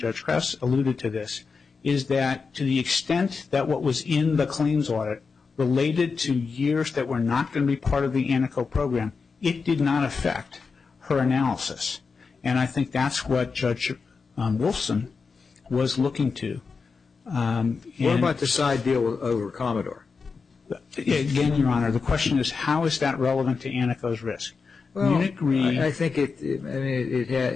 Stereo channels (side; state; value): right; quieter; 4.9 dB